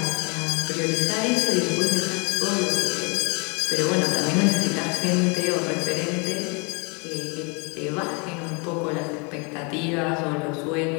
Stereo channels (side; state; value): right; quieter; 31.7 dB